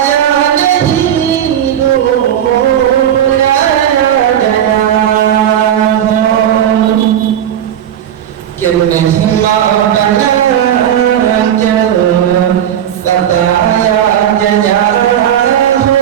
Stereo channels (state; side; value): quieter; left; 10.2 dB